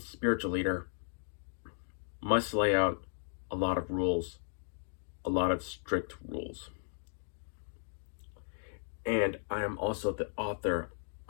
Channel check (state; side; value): silent; right; digital silence